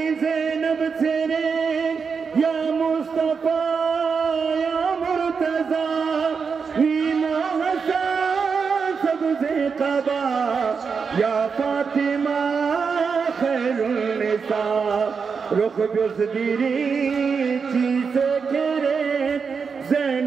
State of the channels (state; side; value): quieter; left; 5.6 dB